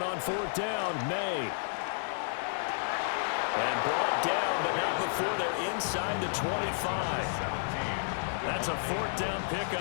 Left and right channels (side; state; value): right; silent; digital silence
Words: on fourth down. May. And brought down, but not before they're inside the 25. That's a fourth down